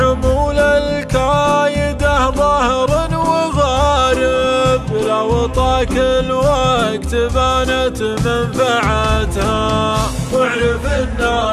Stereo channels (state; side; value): identical; both; correlation 1.00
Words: الكايده ظهر وغارب، لو طاك الوقت بانت منفعتها. واعرف